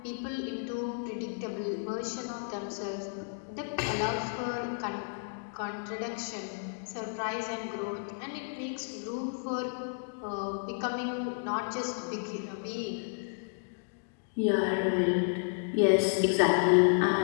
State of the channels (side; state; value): right; silent; digital silence